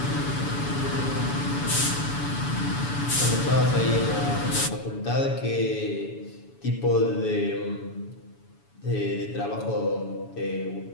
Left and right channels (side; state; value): right; late; 7.1 ms